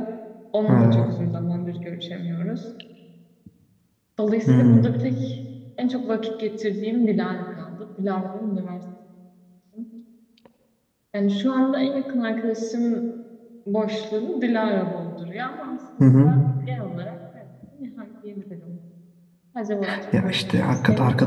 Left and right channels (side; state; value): both; identical; correlation 1.00